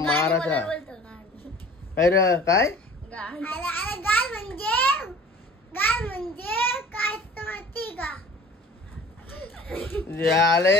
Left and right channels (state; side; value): normal; both; correlation 0.46